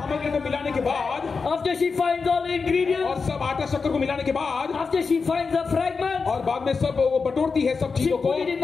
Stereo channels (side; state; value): right; quieter; 4.9 dB